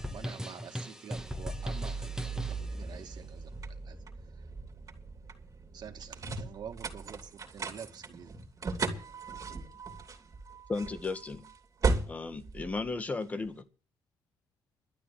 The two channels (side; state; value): both; normal; correlation 0.75